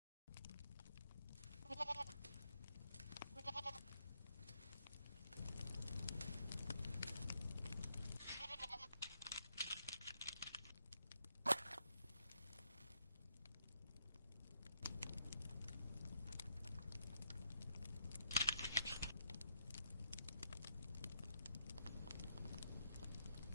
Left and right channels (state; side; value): inverted; both; correlation -0.79